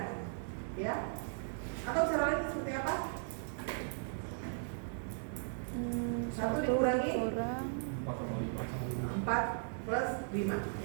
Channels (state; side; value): silent; left; digital silence